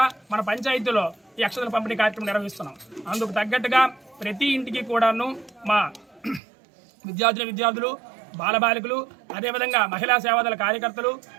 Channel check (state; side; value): drops out; left; at 6.4 s